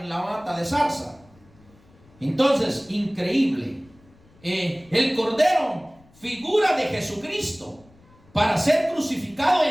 la mata de zarza. Entonces, increíble. El cordero, figura de Jesucristo, para ser crucificado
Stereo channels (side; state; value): left; noise; rumble, 28 dB below the sound